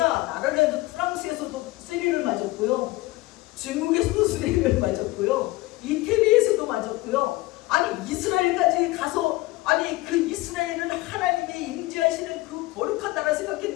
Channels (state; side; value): quieter; right; 19.5 dB